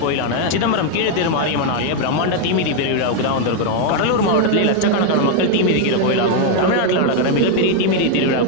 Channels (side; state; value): both; different; correlation 0.01